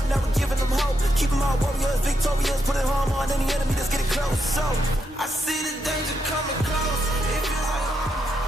Never giving them hope. Keep them all warriors, victorious. Putting harm on any enemy that's getting close. So I see the danger coming close. It feels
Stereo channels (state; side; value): normal; both; correlation 0.81